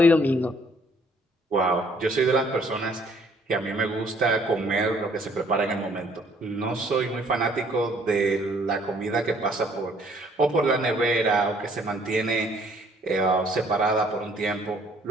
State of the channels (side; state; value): both; normal; correlation 0.62